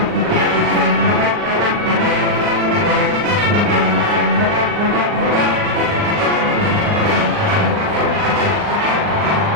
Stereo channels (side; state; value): left; late; 39 ms